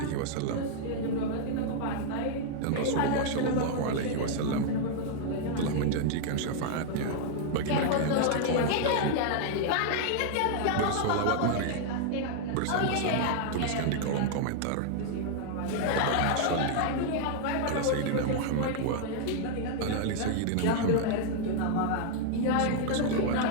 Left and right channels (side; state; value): both; different; correlation 0.00